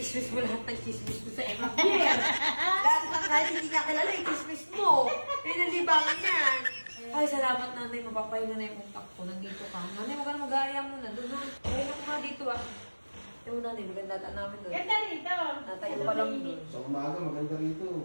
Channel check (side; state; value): both; inverted; correlation -1.00